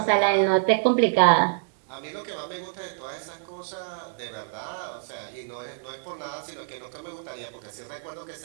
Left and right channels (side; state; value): left; silent; 60 dB below the other